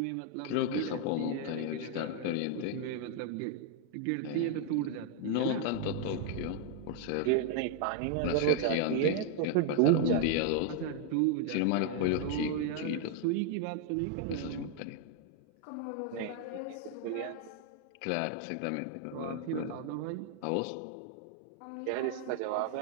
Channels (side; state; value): both; different; correlation 0.00